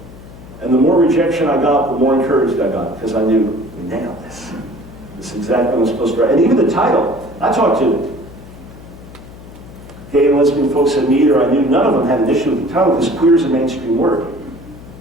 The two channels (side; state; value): left; noise; hum, 17 dB below the sound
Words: And the more rejection I got, the more encouraged I got, because I knew, we nailed this. This is exactly what I'm supposed to write. And even the title, I talked to gay and lesbian folks at Meter. I knew none of them had an issue with the title, because queer is a mainstream word.